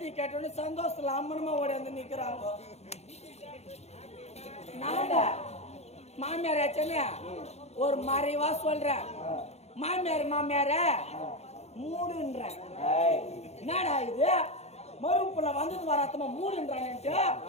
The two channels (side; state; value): right; late; 0.31 ms